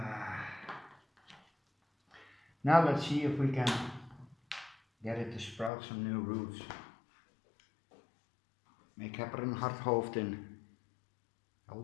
Now let's see if we can get it to sprout some new roots. Ik heb er een hard hoofd in.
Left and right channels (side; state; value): right; drops out; at 5.7 s